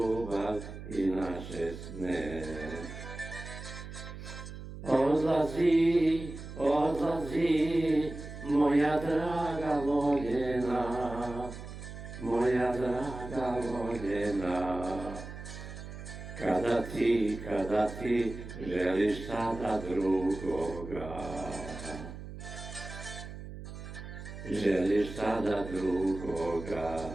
i naše sne. Odlazi, odlazi, moja draga voljena, moja draga voljena. Kada ti želiš sada drugoga, želiš sada drugoga.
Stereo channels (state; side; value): noise; right; hum, 11 dB below the sound